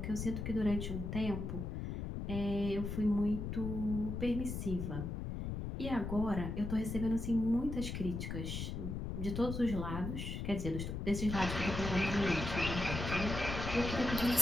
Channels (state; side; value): noise; left; rumble, 4 dB below the sound